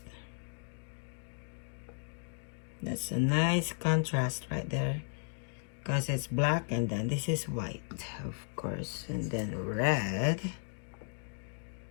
That's a nice contrast right there because it's black and then this is white, of course, and then red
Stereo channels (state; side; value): silent; right; 54 dB below the other